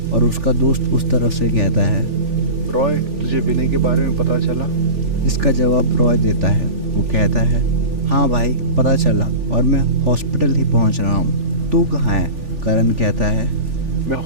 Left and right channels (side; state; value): left; late; 3.4 ms